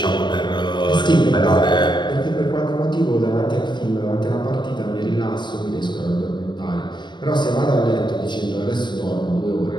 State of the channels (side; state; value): right; late; 0.22 ms